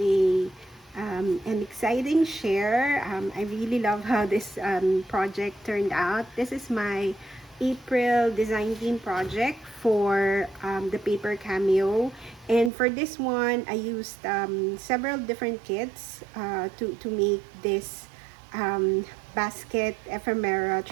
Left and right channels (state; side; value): drops out; left; at 12.7 s